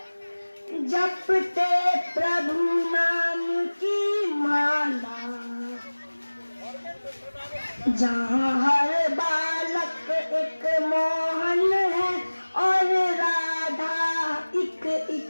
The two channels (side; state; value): both; inverted; correlation -1.00